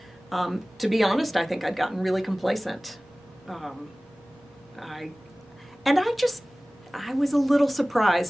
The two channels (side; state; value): both; normal; correlation 0.98